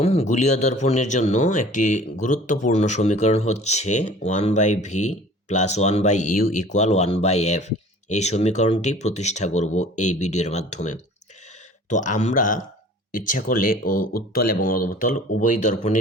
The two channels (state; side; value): normal; both; correlation 0.47